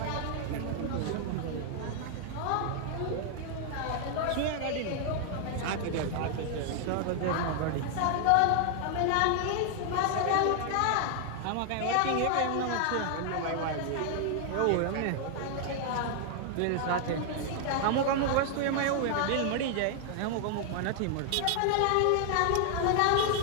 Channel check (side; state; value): both; different; correlation 0.00